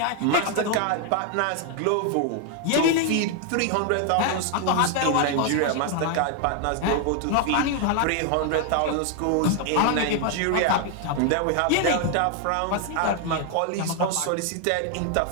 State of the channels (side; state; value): both; different; correlation 0.00